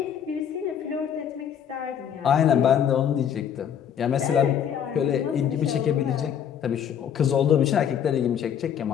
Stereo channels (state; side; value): quieter; right; 8.8 dB